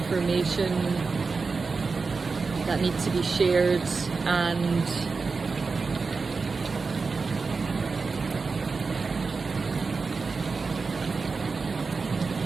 that need to be shared, and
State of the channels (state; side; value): quieter; left; 4.5 dB